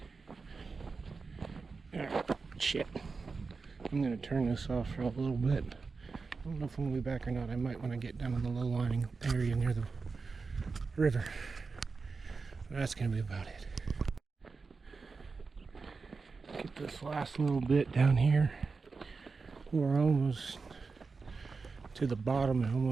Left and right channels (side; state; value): left; quieter; 4.5 dB